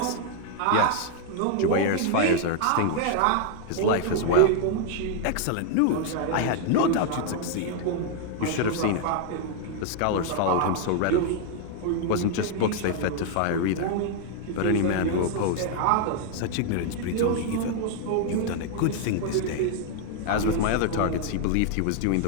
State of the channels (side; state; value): both; different; correlation 0.00